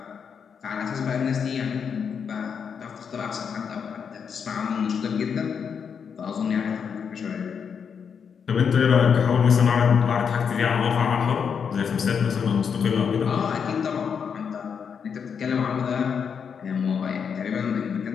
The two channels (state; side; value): quieter; right; 6.8 dB